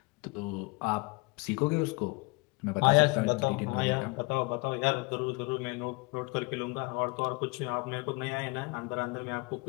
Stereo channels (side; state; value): right; quieter; 28.0 dB